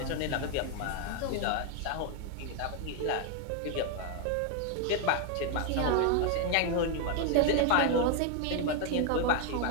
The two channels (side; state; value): both; different; correlation 0.01